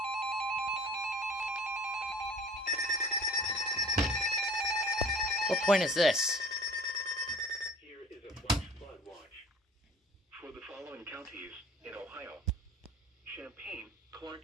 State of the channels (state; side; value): normal; both; correlation 0.46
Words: What point is this? Here is a flash flood watch for the following counties in Ohio: Champaign, Clark,